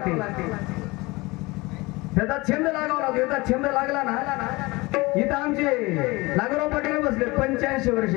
त्याचा छंद लागावा लागतो. याचा छंद लागला ना, इथं आमचे नागराव पाटील बसले 85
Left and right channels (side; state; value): right; quieter; 23.1 dB